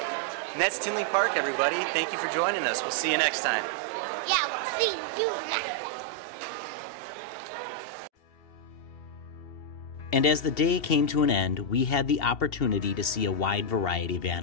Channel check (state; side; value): late; right; 2.7 ms